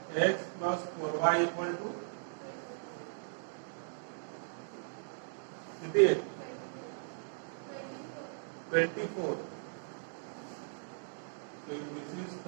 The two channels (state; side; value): silent; left; digital silence